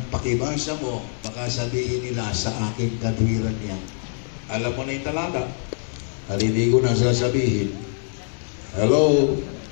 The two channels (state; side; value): silent; right; 61 dB below the other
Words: pakibasa mo. Baka sabihin nila sa aking kadwiran yan. Alam mo na yung talata. At hindi ko na sasabihin. Hello?